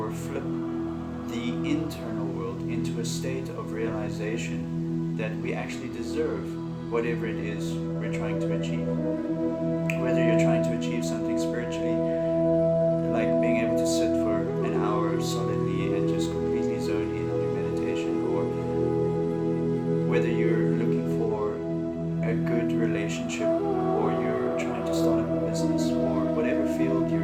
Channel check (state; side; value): identical; both; correlation 1.00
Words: flip the internal world into a state of realization that we actually deserve whatever it is we're trying to achieve. Whether you're trying to achieve something spiritually, like being able to sit for an hour solidly and just completely zone in on your meditation, or whether you're looking for a good relationship, or you're trying to start a business, or whatever field you're